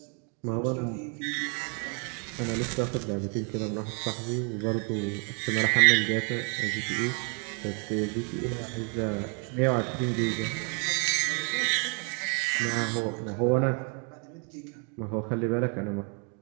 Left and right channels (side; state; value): left; quieter; 38.3 dB